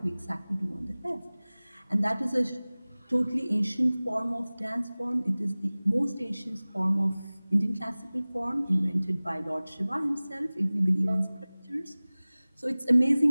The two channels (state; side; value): inverted; both; correlation -0.99